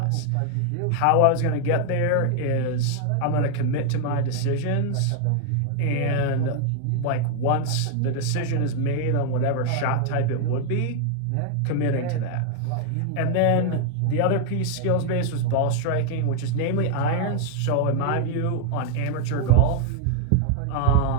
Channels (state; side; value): different; both; correlation 0.00